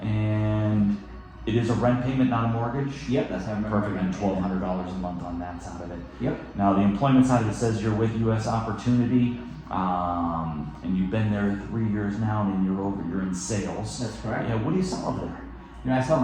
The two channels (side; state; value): both; identical; correlation 1.00